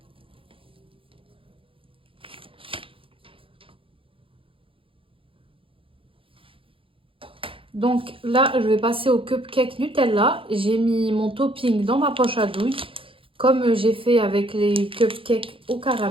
Donc là, je vais passer au cupcake Nutella. J'ai mis mon topping dans ma poche à douille, comme j'ai fait avec les cupcakes au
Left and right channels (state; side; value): late; left; 0.26 ms